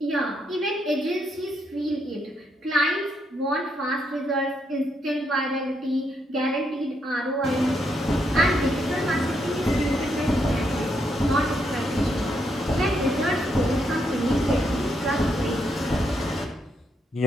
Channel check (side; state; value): both; normal; correlation 0.78